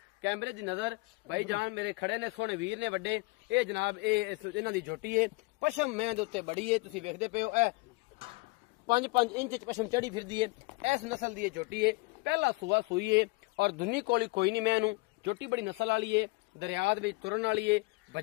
कैमरे की नज़र भाई जान मेरे खड़े ने, सोहने वीर ने वड्डे। ये जनाब इन्हां दी झोटी है, पशम मैं दे उत्ते बड़ी है, तुसीं वेखदे पे हो। 5-5 इंच पशम चढ़ी फिरदी है। इस नस्ल की झोटी है, पहला सुबह सूई है और दुनी कोली कोई नहीं। मैं झोटी बड़ी नस्ल वाली है, दरिया तुरन वाली है,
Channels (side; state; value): right; quieter; 25.2 dB